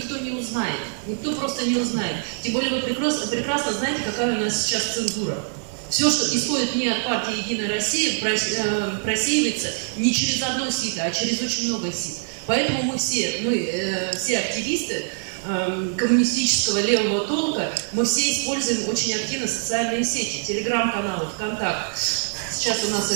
не узнает, никто просто не узнает. Тем более вы прекрасно знаете, какая у нас сейчас цензура. Все, что исходит не от партии «Единая Россия», просеивается не через одно сито, а через очень много сит. Поэтому мы все активисты коммунистического левого толка, мы все используем очень активно социальные сети, телеграм-каналы, ВКонтакт. Сейчас у нас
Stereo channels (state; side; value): silent; left; digital silence